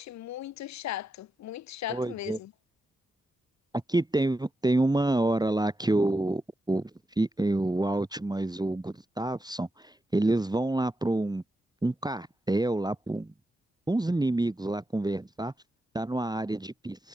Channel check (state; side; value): normal; both; correlation 0.87